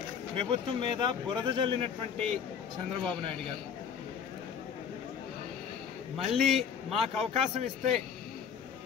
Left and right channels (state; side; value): quieter; right; 7.3 dB